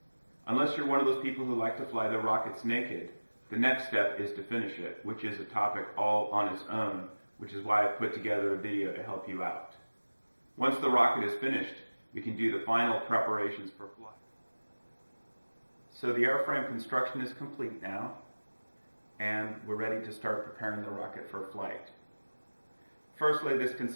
Unless you're one of those people who like to fly their rockets naked, the next step is to finish it, which is a topic all on its own, which is why I've put together a video to help you out. Once the rocket is finished, we can do the final preparations for flight. So the airframe construction is complete now, and we're ready to start preparing the rocket for flight. Firstly, this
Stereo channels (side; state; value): both; inverted; correlation -1.00